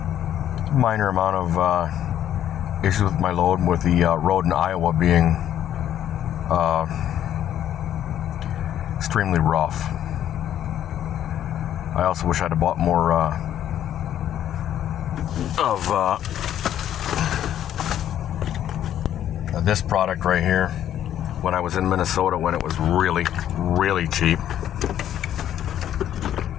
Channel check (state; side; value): quieter; right; 10.9 dB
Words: Minor amount of issues with my load, with the road in Iowa being extremely rough. I also wish I'd have bought more of this product right here when I was in Minnesota, when it was really, really cheap.